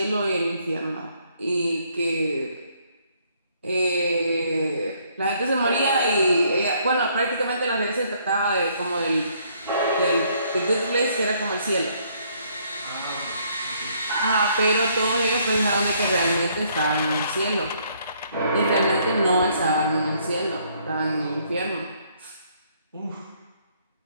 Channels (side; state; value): both; inverted; correlation -0.67